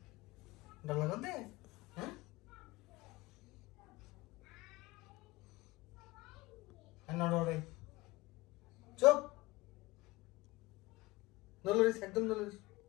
ডর লাগতে হ্যাঁ নড়ে চুপ নলরিস একদম নলরিস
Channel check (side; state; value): right; quieter; 20.9 dB